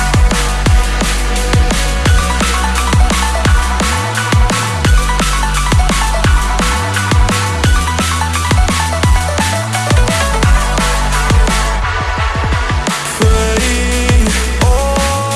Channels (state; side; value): identical; both; correlation 1.00